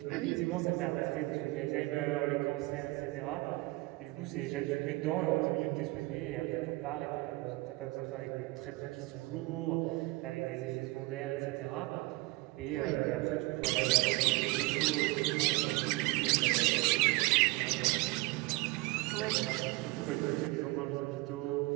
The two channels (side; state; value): left; quieter; 22.5 dB